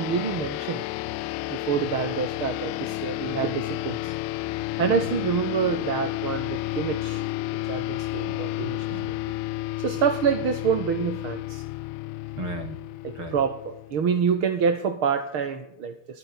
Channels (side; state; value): left; late; 6.5 ms